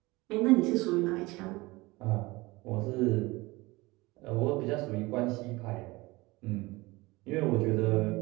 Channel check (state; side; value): quieter; left; 22.0 dB